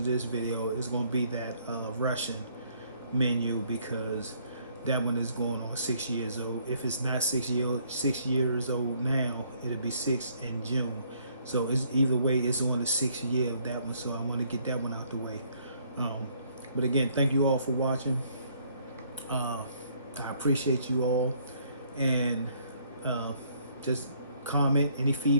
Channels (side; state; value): both; inverted; correlation -0.65